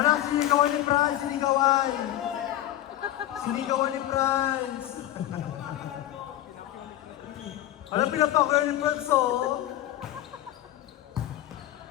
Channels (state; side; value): quieter; right; 13.7 dB